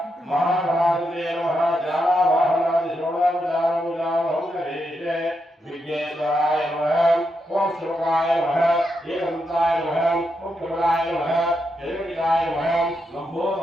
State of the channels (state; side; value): normal; both; correlation 0.83